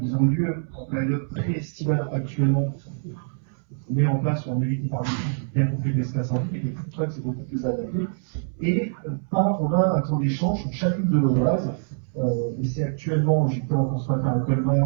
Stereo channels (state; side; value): silent; left; 62 dB below the other